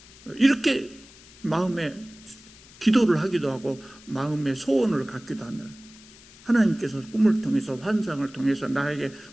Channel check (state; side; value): noise; left; hiss, 22 dB below the sound